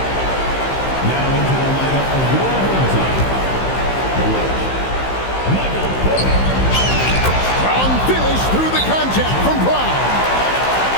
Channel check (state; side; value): late; right; 15 ms